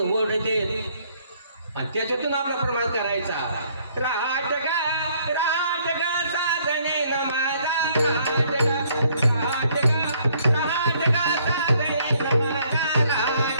ओढते आणि त्याच्यातून आपला प्रमाण करायचा. रहाट गा साधने न माझा रहाट गा साधने न माझा रहाट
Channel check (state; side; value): inverted; both; correlation -0.65